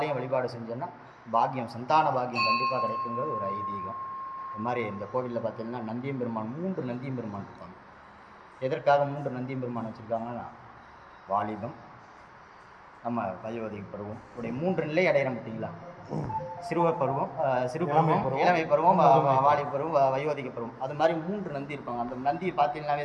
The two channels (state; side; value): identical; both; correlation 1.00